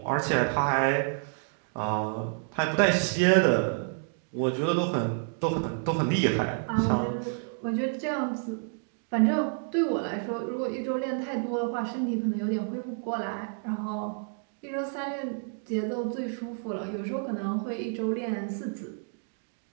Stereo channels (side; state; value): left; silent; 58 dB below the other